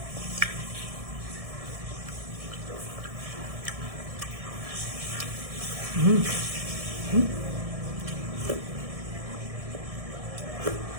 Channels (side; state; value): left; late; 1.7 ms